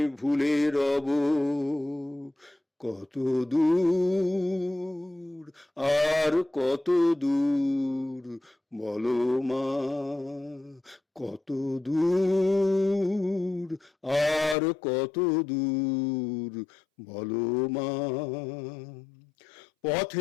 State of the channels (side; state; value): right; drops out; at 14.6 s